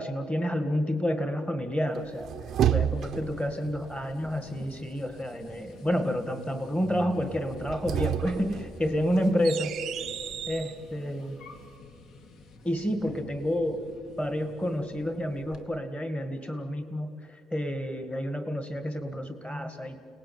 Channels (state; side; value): normal; both; correlation 0.84